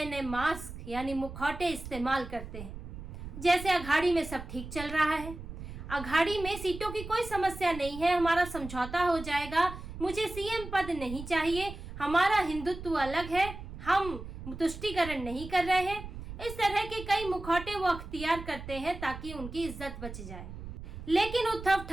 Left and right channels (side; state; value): right; noise; rumble, 11 dB below the sound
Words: नए मास्क यानी मुखौटे इस्तेमाल करते हैं। जैसे अघाड़ी में सब ठीक चल रहा है, अघाड़ी में सीटों की कोई समस्या नहीं है, हमारा समझौता हो जाएगा, मुझे सीएम पद नहीं चाहिए, हमारा हिंदुत्व अलग है, हम तुष्टीकरण नहीं कर रहे हैं। इस तरह के कई मुखौटे वो अख्तियार करते हैं ताकि उनकी इज्जत बच जाए। लेकिन उद्धव